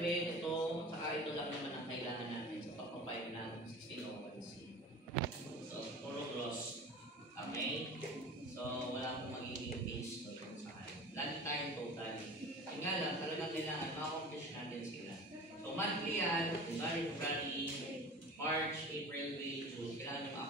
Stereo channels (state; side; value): normal; both; correlation 0.37